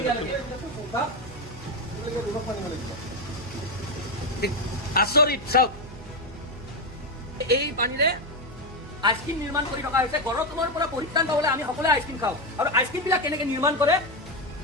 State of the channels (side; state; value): both; normal; correlation 0.09